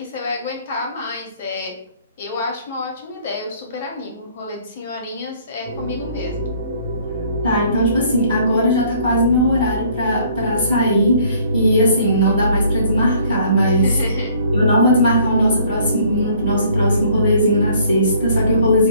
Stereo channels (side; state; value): both; inverted; correlation -0.59